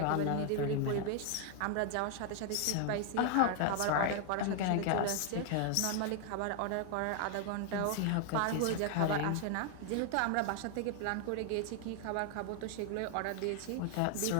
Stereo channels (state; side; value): different; both; correlation 0.00